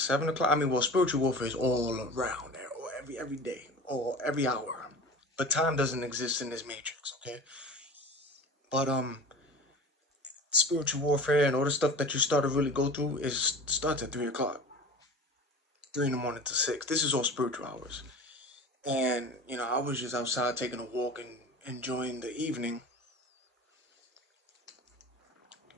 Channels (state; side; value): normal; both; correlation 0.37